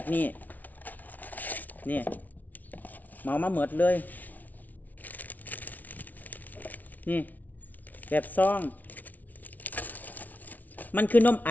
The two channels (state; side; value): late; right; 0.077 ms